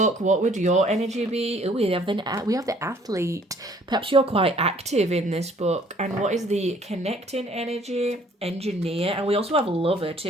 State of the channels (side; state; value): both; normal; correlation 0.58